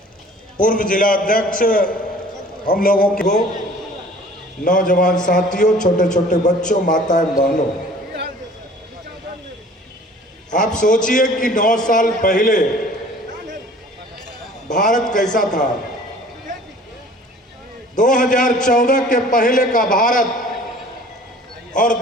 पूर्व जिला अध्यक्ष हम लोगों को, नौजवान साथियों, छोटे छोटे बच्चों, माताएं बहनों, आप सोचिए कि 9 साल पहले भारत कैसा था। 2014 के पहले का भारत और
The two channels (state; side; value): normal; both; correlation 0.49